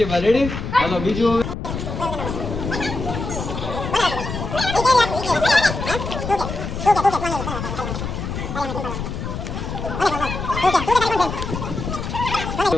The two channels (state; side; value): noise; left; rumble, 5 dB below the sound